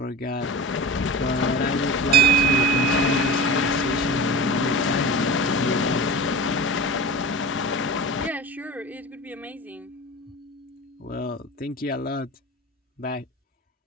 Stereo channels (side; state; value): both; normal; correlation 0.31